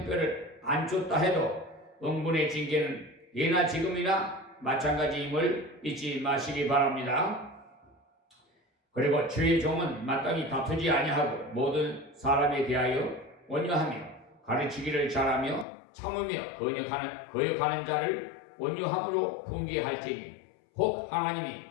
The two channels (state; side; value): drops out; right; at 15.7 s